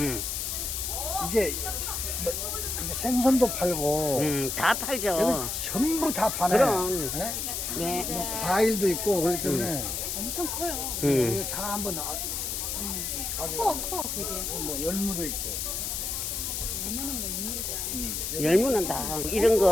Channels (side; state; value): left; noise; hiss, 2 dB below the sound